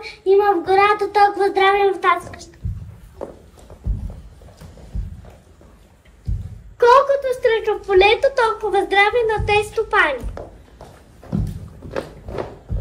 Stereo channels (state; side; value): identical; both; correlation 1.00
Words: има в гората, толкова здраве в тази къща. Колкото срещу в полето, толкова здраве на тези стопани.